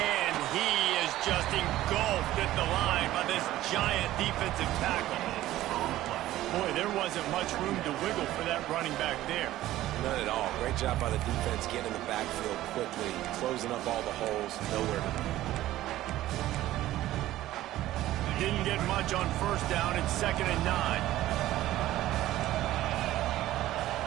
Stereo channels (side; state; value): left; quieter; 14.9 dB